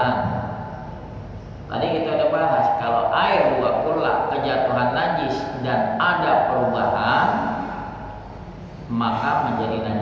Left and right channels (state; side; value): identical; both; correlation 1.00